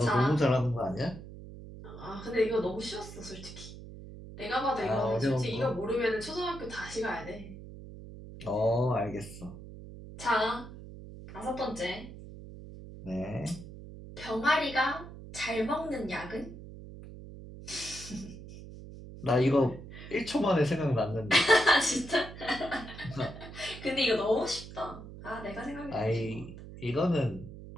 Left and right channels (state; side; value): noise; right; hum, 14 dB below the sound